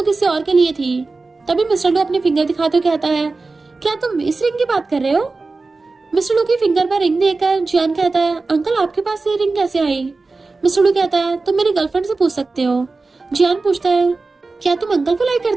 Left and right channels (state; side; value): quieter; left; 3.7 dB